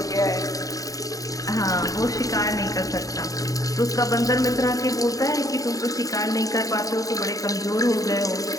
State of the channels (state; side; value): late; right; 0.17 ms